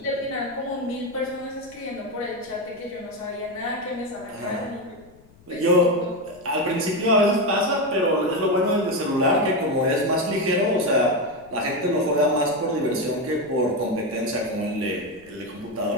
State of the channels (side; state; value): left; noise; rumble, 27 dB below the sound